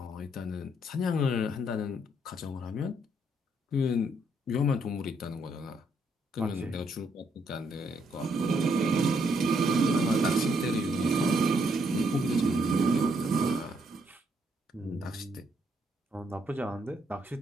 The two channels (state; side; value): normal; both; correlation 0.73